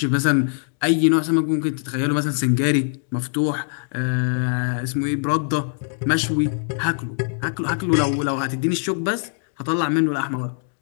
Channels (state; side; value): silent; right; digital silence